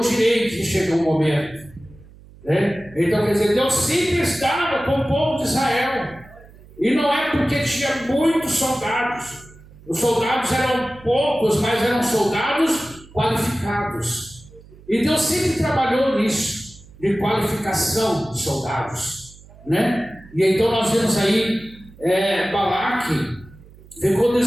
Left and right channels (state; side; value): noise; right; hum, 22 dB below the sound